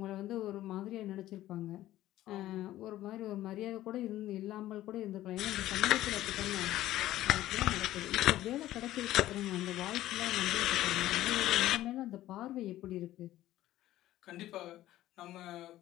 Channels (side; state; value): right; quieter; 14.5 dB